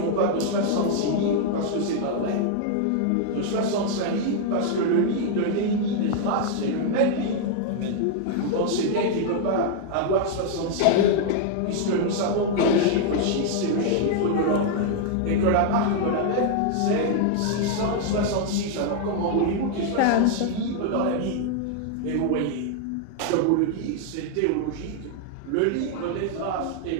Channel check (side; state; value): both; different; correlation 0.00